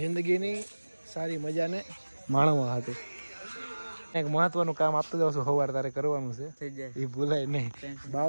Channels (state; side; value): inverted; both; correlation -1.00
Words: સારી મજાને માણવા હાટુ. એક મહત્વનું કામ આપતો જાઉં છું સવાર તારે કરવાનું છે, એ ભૂલાય નહીં.